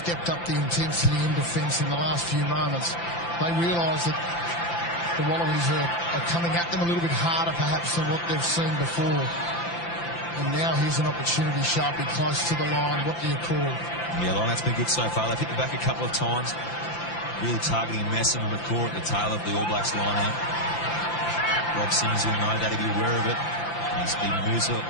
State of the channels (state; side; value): late; right; 5.9 ms